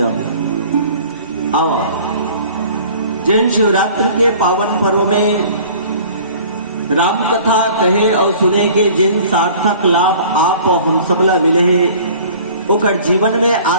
आओ जैन शिवरात्रि के पावन पर्व में राम कथा कहे और सुने के जिन सार्थक लाभ आप और हम सबला मिले है ओकर जीवन में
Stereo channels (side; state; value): both; inverted; correlation -0.48